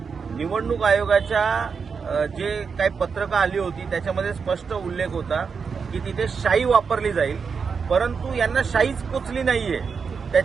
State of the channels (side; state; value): left; quieter; 5.7 dB